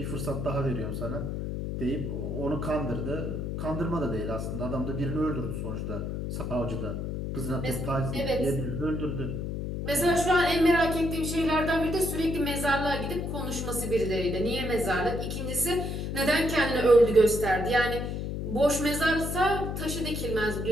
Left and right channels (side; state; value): left; noise; hum, 3 dB below the sound